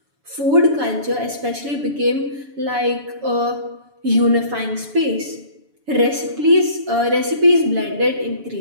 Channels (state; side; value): late; left; 7.0 ms